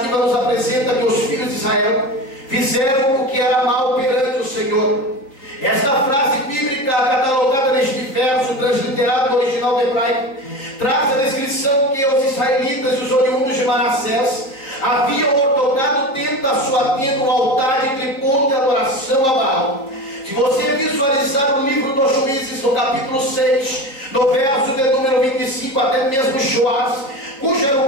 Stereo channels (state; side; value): late; right; 3.8 ms